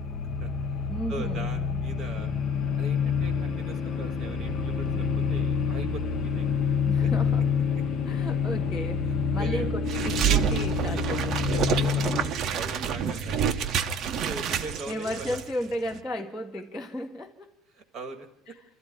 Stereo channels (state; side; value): normal; both; correlation 0.48